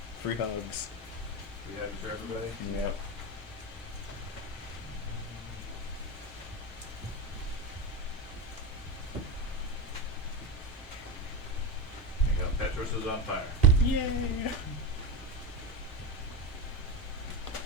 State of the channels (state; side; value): normal; both; correlation 0.18